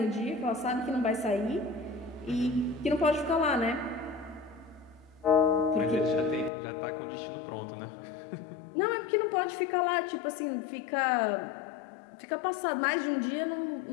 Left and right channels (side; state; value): right; drops out; at 6.5 s